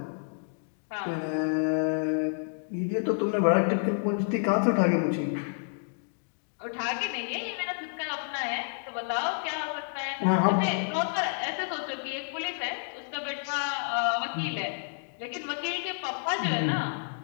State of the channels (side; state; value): right; silent; digital silence